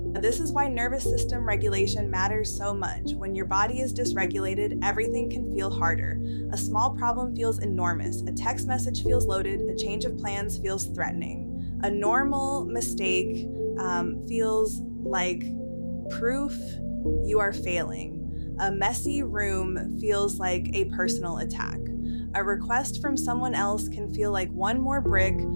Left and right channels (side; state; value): both; inverted; correlation -1.00